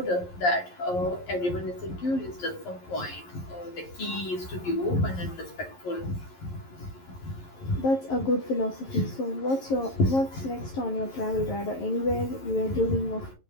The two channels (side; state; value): right; late; 11 ms